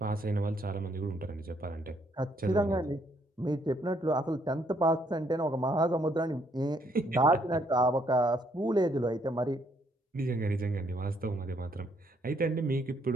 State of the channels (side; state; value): both; normal; correlation 0.70